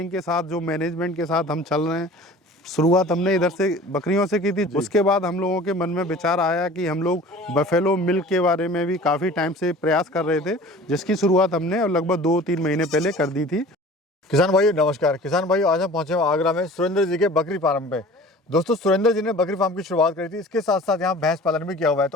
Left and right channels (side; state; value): both; normal; correlation 0.43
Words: के साथ जो मैनेजमेंट के साथ हम चल रहे हैं, शुरुआत हमने इधर से बकरियों से की थी। उसके बाद हम लोगों के मन में विचार आया कि हम लोग बफेलो मिल्क के बारे में भी काफ़ी टाइम से प्रयास कर रहे थे, जिसकी शुरुआत हमने लगभग 2-3 महीने पहले कर दी थी। किसान भाई नमस्कार। किसान भाई आज हम पहुंचे हैं आगरा में सुरेंद्र जी के बकरी फार्म पे। दोस्तों सुरेंद्र जी ने बकरी फार्म की शुरुआत करी थी, इसके साथ साथ यहाँ भैंस पालन भी किया हुआ है।